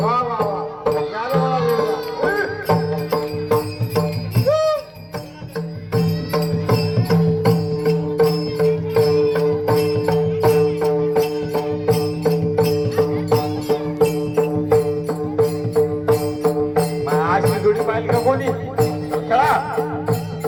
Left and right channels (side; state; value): both; identical; correlation 1.00